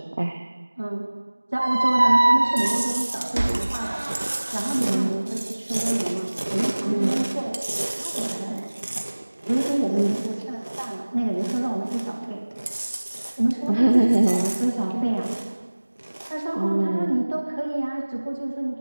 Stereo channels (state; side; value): inverted; both; correlation -1.00